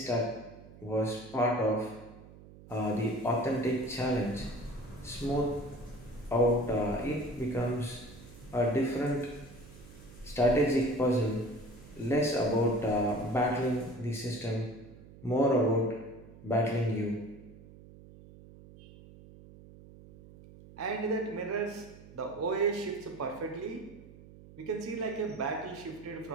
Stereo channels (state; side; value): noise; right; hum, 19 dB below the sound